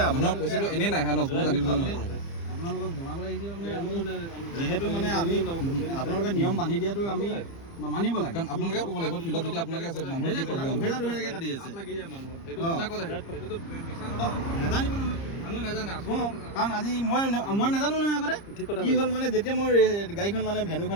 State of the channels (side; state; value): right; late; 30 ms